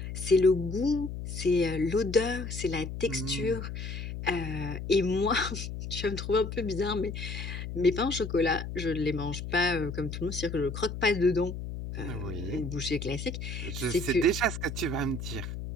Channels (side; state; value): left; noise; hum, 7 dB below the sound